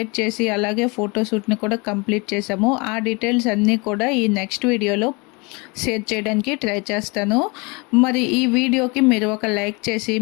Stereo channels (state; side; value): quieter; right; 28.6 dB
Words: చేసి అలాగే ఫోటోషూట్ని కూడా కంప్లీట్ చేసాము. ఆ డీటెయిల్స్ అన్నీ కూడా ఈ నెక్స్ట్ వీడియోలో షేర్ చేయడానికి ట్రై చేస్తాను. మరి ఈ వీడియోకి మీరు ఒక లైక్ చేసి